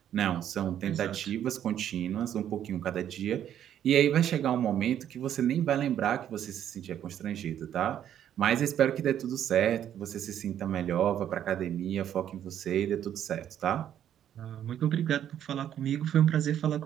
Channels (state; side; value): quieter; left; 10.3 dB